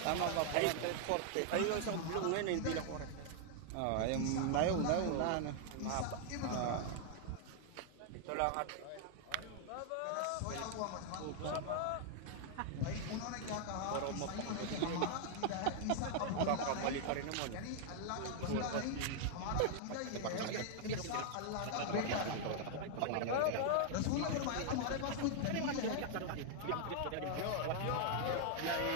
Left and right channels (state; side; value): different; both; correlation 0.00